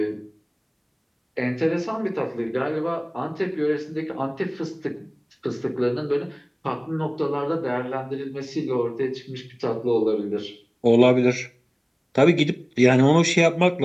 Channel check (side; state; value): both; identical; correlation 1.00